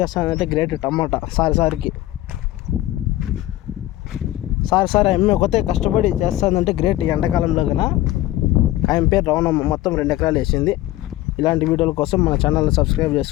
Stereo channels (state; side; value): quieter; right; 15.5 dB